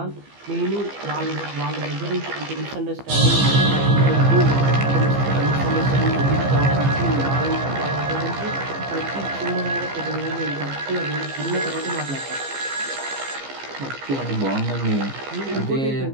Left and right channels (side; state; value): left; late; 15 ms